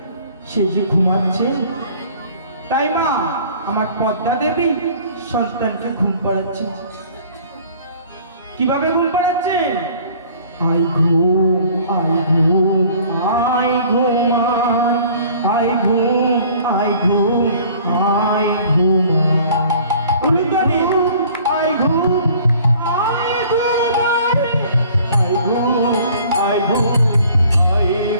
সে যে ঘুমাচ্ছে, তাই মা আমার পদ্মা দেবী সন্তানকে ঘুম পাড়াচ্ছে। কিভাবে ঘুম পাড়াচ্ছে? আই ঘুম আই ঘুম আই ঘুমান, আই ঘুম আই ঘুম আই ঘুম, উলুদানি আই ঘুম আই ঘুমাই, আই ঘুম আই ঘুম আই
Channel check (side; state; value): both; inverted; correlation -0.52